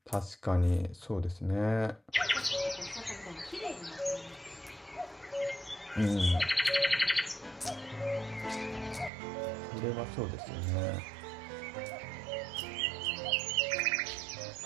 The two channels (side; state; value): left; drops out; at 9.1 s